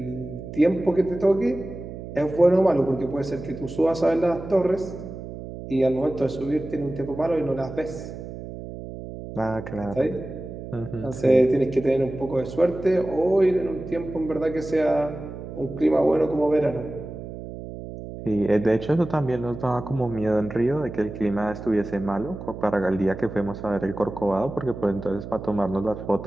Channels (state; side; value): noise; right; hum, 11 dB below the sound